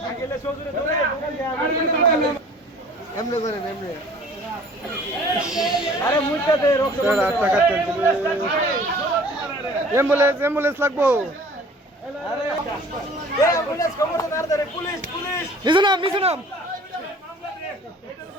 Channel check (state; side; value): normal; both; correlation 0.49